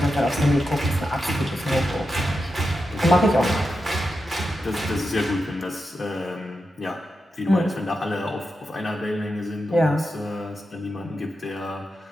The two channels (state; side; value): normal; both; correlation 0.89